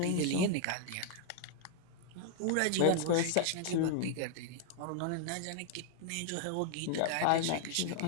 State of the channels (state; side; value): different; both; correlation 0.00